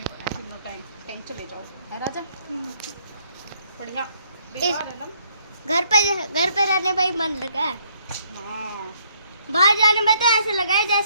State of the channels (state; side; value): inverted; both; correlation -0.68